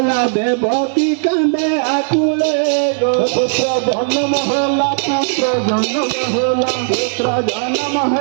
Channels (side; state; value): left; silent; digital silence